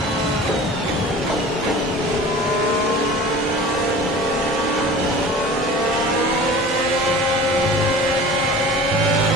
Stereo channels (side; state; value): both; normal; correlation 0.40